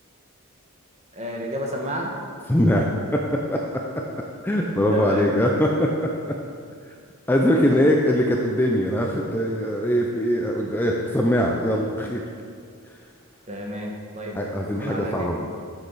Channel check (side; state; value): both; normal; correlation 0.63